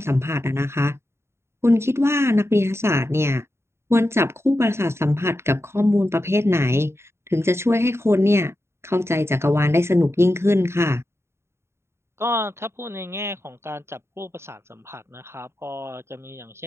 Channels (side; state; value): left; late; 0.13 ms